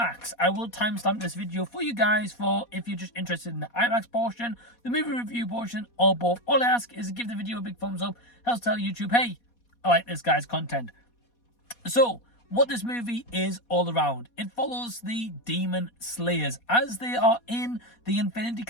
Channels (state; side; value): late; right; 4.2 ms